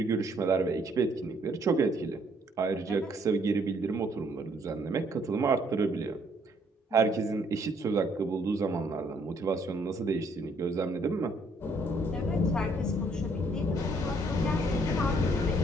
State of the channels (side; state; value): both; normal; correlation 0.66